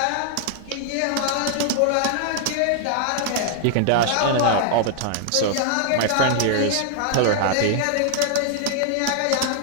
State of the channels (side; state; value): both; different; correlation 0.00